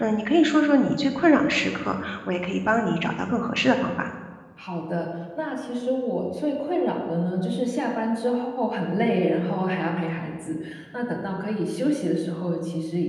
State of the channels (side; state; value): both; identical; correlation 1.00